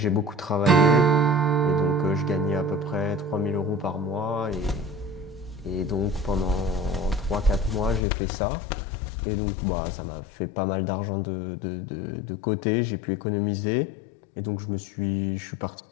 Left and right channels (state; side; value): drops out; right; at 8.0 s